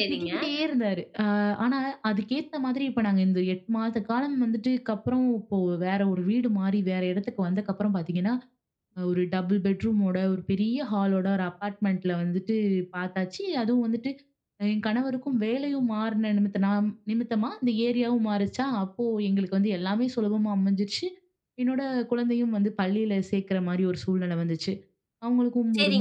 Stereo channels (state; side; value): identical; both; correlation 1.00